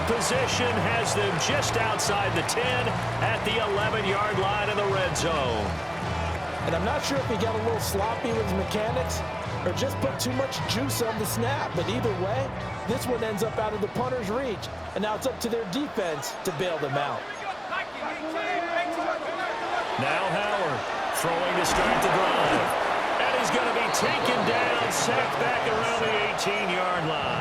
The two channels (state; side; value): identical; both; correlation 1.00